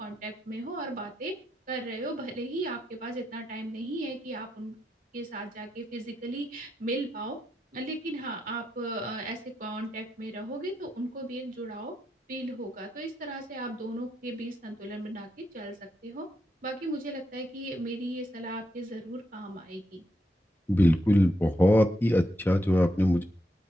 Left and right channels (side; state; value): both; normal; correlation 0.82